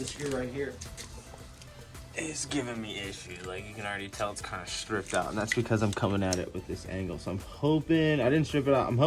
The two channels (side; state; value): both; identical; correlation 1.00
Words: screw right here. It's giving me issues. Like, you can already tell it's kind of stripped out, and that's because I'm coming at it with this angle. So I'm hoping I didn't strip it out. I'm